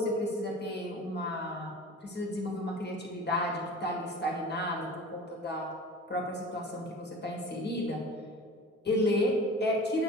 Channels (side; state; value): both; normal; correlation 0.39